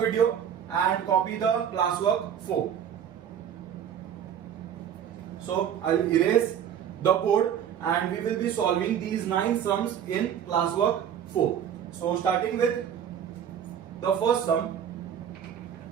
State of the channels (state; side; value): quieter; left; 8.9 dB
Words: and copy the classwork 4. So I'll erase the board and we will be solving these 9 sums in classwork 4. So starting with the first sum.